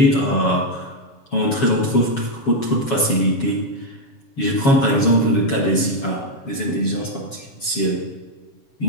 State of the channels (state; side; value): late; right; 7.2 ms